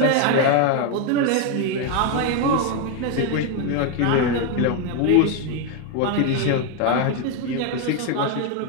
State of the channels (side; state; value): both; different; correlation 0.01